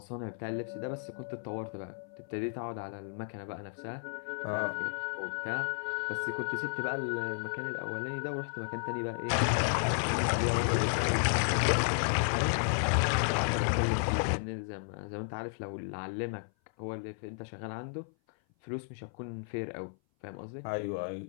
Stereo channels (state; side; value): silent; right; 56 dB below the other